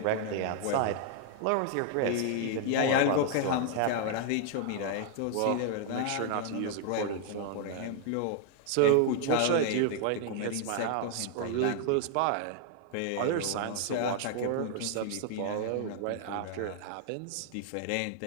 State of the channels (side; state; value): both; different; correlation 0.00